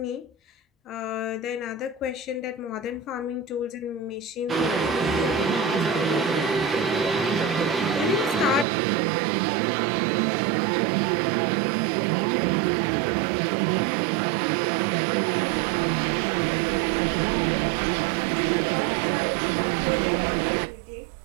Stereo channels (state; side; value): drops out; left; at 8.7 s